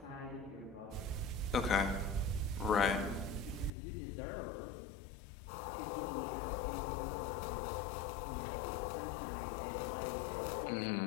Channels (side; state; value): right; drops out; at 3.7 s